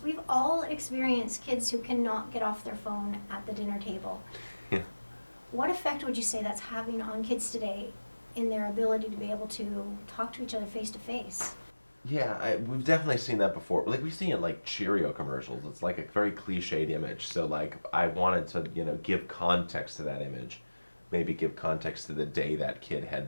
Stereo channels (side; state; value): both; inverted; correlation -1.00